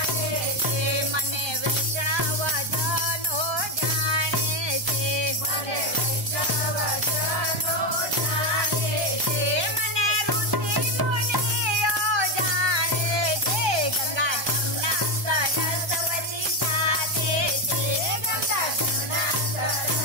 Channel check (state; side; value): late; left; 1.2 ms